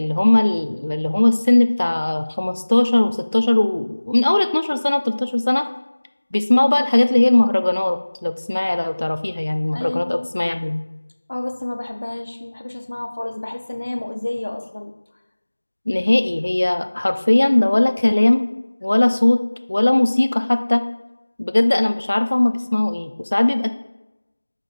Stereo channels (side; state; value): both; inverted; correlation -1.00